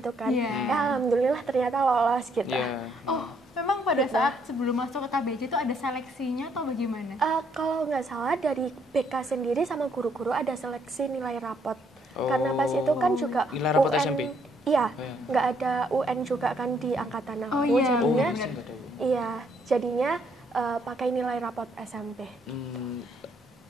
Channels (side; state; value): both; normal; correlation 0.70